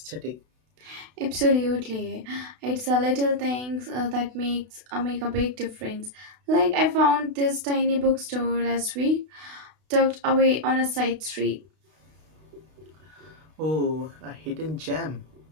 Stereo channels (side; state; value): left; late; 32 ms